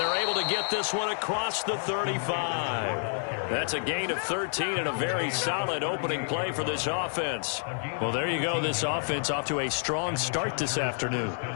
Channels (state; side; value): silent; right; 58 dB below the other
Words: This one across the 35. That's a gain of 13 and a very solid opening play for this offense. Well, there you go. This offense off to a strong start this afternoon.